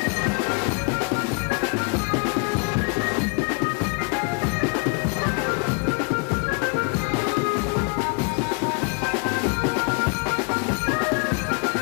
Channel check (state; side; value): quieter; right; 36.3 dB